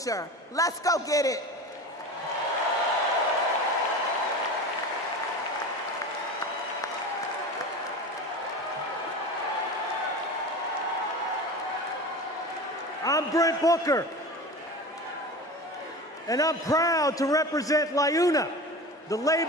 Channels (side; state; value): both; normal; correlation 0.31